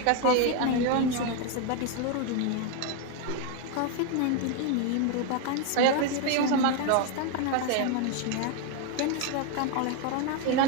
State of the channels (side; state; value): both; different; correlation 0.01